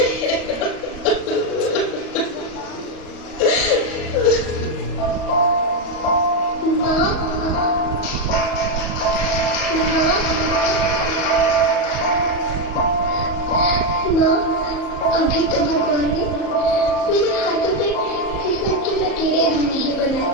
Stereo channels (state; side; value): late; right; 38 ms